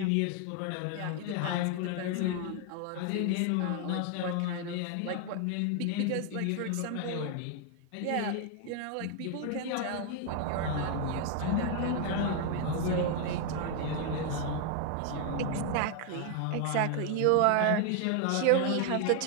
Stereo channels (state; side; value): different; both; correlation 0.00